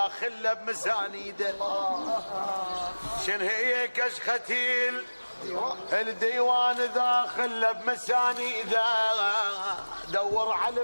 خلى بمسانيده. شنهي كشختي الديوان إذا خلى بمسانيده. دور على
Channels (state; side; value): inverted; both; correlation -1.00